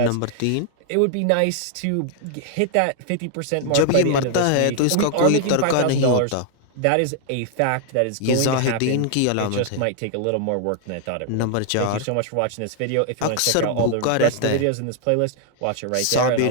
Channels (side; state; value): both; different; correlation 0.00